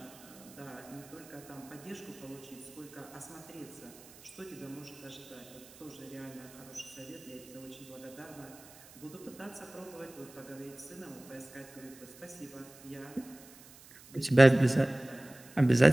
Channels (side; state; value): right; noise; hiss, 21 dB below the sound